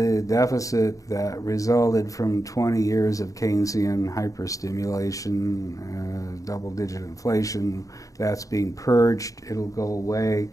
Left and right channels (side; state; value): right; late; 0.16 ms